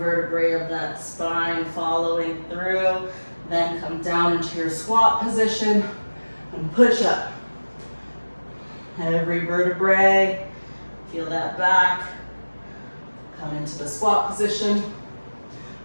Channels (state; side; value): inverted; both; correlation -1.00